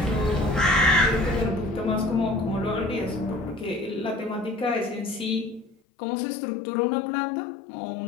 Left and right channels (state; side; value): drops out; right; at 5.8 s